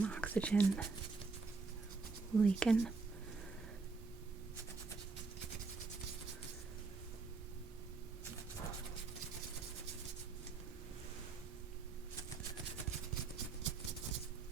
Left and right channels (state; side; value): quieter; left; 4.2 dB